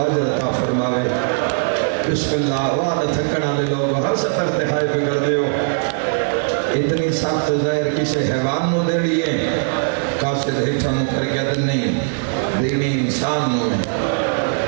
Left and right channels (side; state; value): left; silent; digital silence